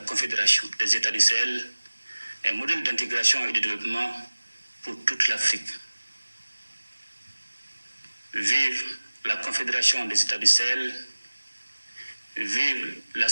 Confédération des États du Sahel un modèle d'intégration et de développement pour toute l'Afrique. Vive la Confédération des États du Sahel, vive la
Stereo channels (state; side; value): inverted; both; correlation -1.00